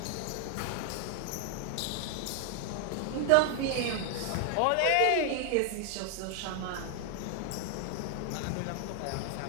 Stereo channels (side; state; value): both; different; correlation 0.00